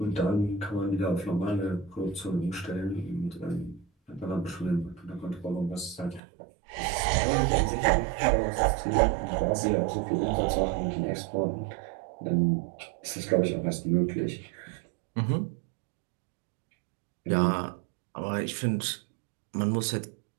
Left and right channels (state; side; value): drops out; left; at 6.2 s